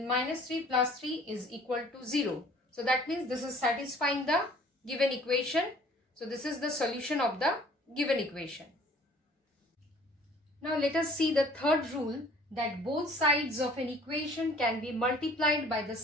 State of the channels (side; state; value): both; normal; correlation 0.53